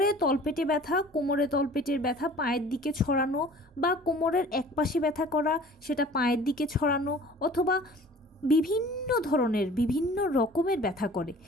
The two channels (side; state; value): both; normal; correlation 0.47